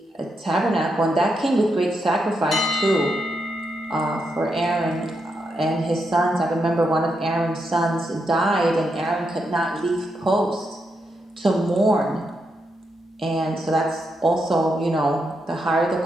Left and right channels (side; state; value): both; normal; correlation 0.82